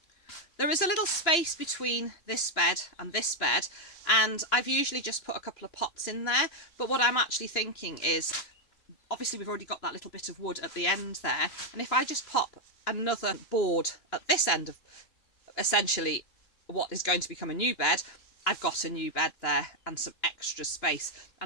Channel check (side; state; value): right; late; 2.9 ms